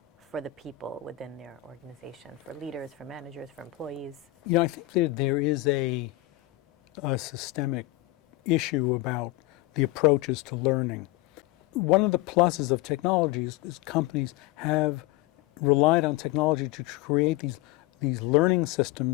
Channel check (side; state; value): right; quieter; 17.5 dB